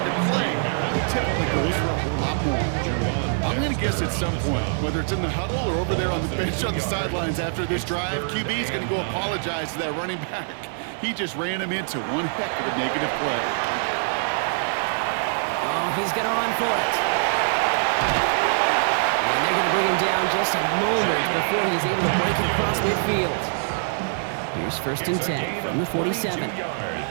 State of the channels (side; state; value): left; silent; 62 dB below the other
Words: the play. Typically goes for a whole lot more. I'm going to guess at some point, whether it's in the huddle or over there on the bench on the sidelines after this drive, QB is going to go apologize to that running back. He just ran him into one heck of a negative play. Oh, he's going to run for it. And they're going to bring him down just a moment before he's able to break it across midfield. Here's first and 10 from the 47. Play